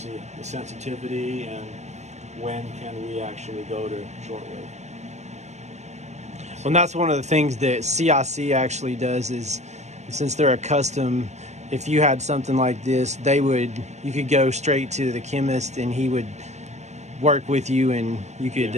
the sensitivity and when can we actually go to shortwave. Well, and that's one of the things that CIC actually does is, since they're a custom, if you had something like this, you could go straight to the chemist and he would work with you and you could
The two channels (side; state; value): left; late; 0.33 ms